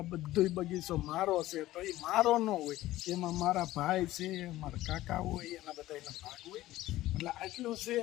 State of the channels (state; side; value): quieter; right; 15.9 dB